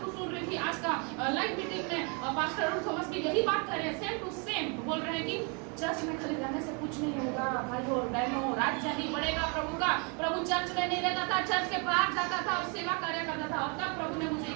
सुन रही थी, आज का लाइव मीटिंग में पास्टर अरुण थॉमस की यही बात कर रहे हैं, सेम टू सेम बोल रहे हैं कि चर्च में खाली रहने से कुछ नहीं होगा भाइयों और बहनों, राज्य ही बढ़ेगा प्रभु का। प्रभु चर्च में नहीं रहता था, चर्च के बाहर जाता था और सेवा कार्य करता था। और तब प्रभु ने मुझे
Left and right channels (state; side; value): quieter; left; 34.6 dB